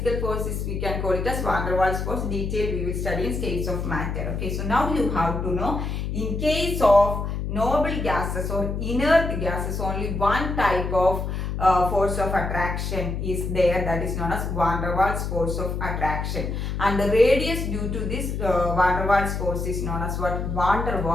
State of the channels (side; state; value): left; noise; hum, 3 dB below the sound